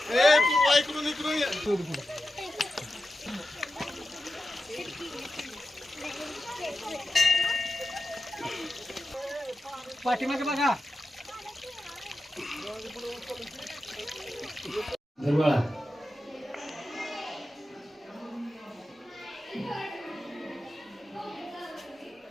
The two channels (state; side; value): normal; both; correlation 0.92